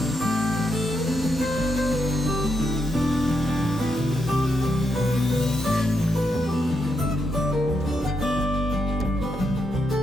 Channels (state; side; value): normal; both; correlation 0.81